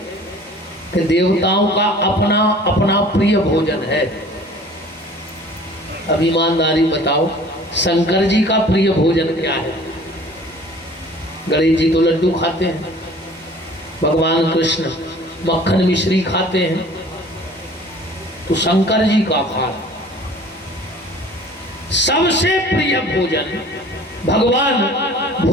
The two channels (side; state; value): both; normal; correlation 0.48